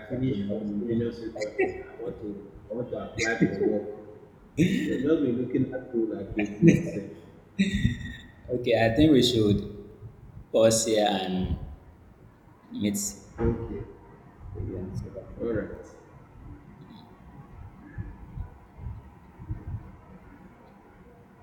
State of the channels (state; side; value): identical; both; correlation 1.00